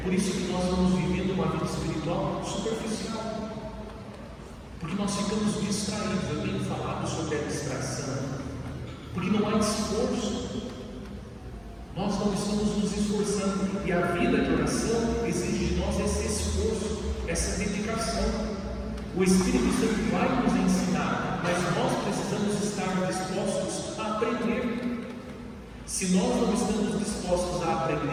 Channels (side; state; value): both; identical; correlation 1.00